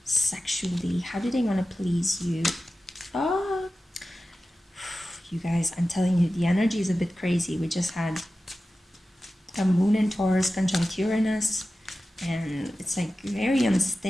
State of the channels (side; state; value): both; normal; correlation 0.94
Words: sexually? How do they want to please you? Oh, you guys, I'm telling you, the energy is a bit crazy. We just had a moon in Taurus conjunct Uranus, and it's like very